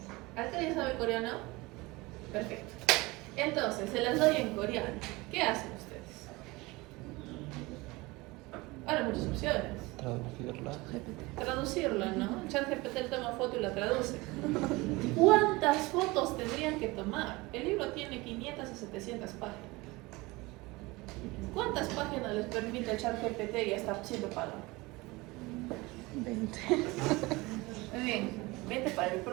¿Acá alguien sabe coreano? Perfecto. Entonces, se las doy en coreano. ¿Qué hacen ustedes? Ahora muchas opciones. Traducirla, ¿no? ChatGPT toma foto y la traduce. ¿Cuántas fotos tendrían que tomar? El libro tiene 500 a 700 páginas. ¿Cuántas páginas les permite el ChatGPT y está siendo pagado? 20. Muy bien, 20 para el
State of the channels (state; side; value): quieter; left; 22.6 dB